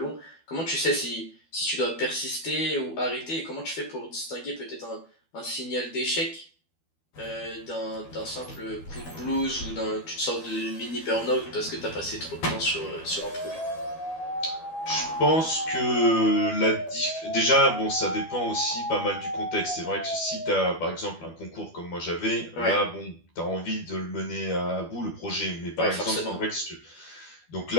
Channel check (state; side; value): late; right; 12 ms